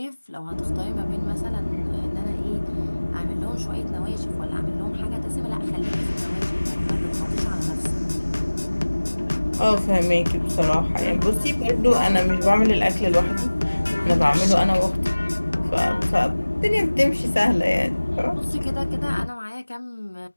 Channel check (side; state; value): both; inverted; correlation -1.00